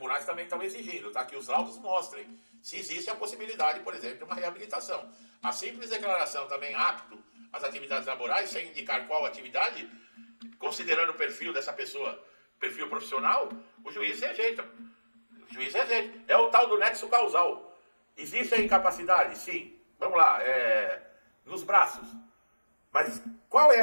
também estão exigindo, tá? Que os laudos mostrem se existe a possibilidade, por exemplo, de uma reabilitação. A simples declaração também apto às atividades laborais, sem indicar qual atividade, considerando o perfil dessa pessoa, perfil profissional, o juiz rejeita. O juiz rejeita. É o tal do nexo causal. Existe a incapacidade? Sim. Vamos lá, nos braços. Mas qual é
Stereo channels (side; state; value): both; inverted; correlation -1.00